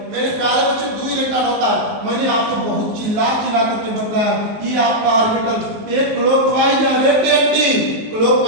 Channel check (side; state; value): left; late; 19 ms